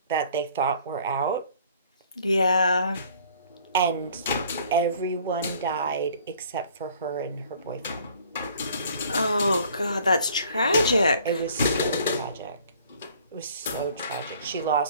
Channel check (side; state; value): both; inverted; correlation -0.55